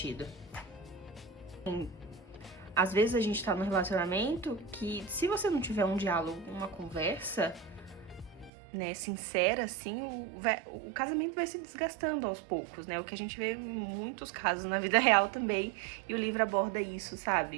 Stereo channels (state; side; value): drops out; left; at 8.5 s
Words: Às vezes a gente tá num relacionamento que, se você não tiver um diálogo, uma conversa, né, sincera, assim, o casamento vai se desgastando aos poucos, né? O que a gente vê em muitos casos na vida real também, e o livro aborda isso,